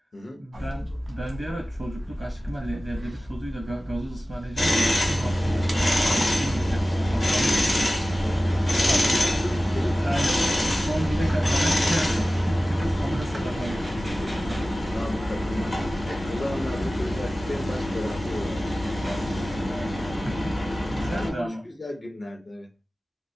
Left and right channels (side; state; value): both; normal; correlation 0.96